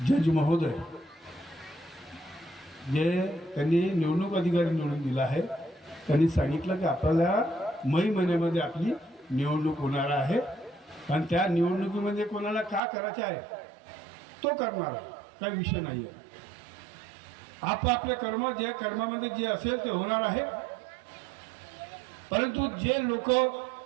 जज महोदय जे त्यांनी निवडणूक अधिकारी निवडून दिला आहे, त्यांनी सांगितलं की आपल्याला मे महिन्यामध्ये आपली निवडणूक होणार आहे. आणि त्या निवडणुकीमध्ये कोणाला का करायचे आहे तो करणार आहे, काही विषय नाही आहे. आपापले कर्म जे कर्मामध्ये जे असेल ते होणार आहे. परंतु जे लोक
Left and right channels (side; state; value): left; drops out; at 12.8 s